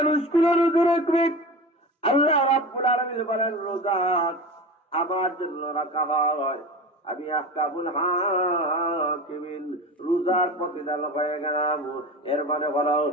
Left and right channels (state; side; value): normal; both; correlation 0.30